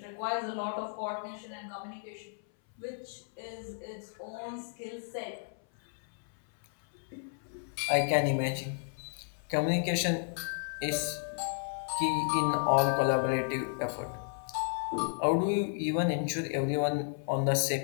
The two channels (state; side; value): silent; right; 56 dB below the other